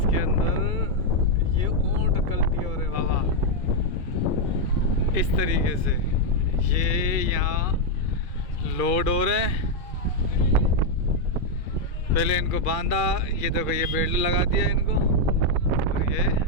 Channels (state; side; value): late; right; 2.4 ms